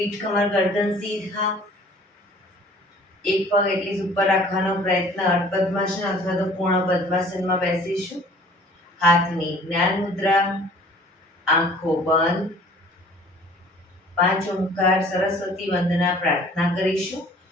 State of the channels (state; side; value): normal; both; correlation 0.51